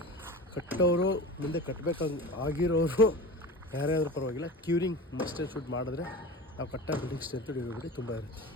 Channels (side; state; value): both; normal; correlation 0.31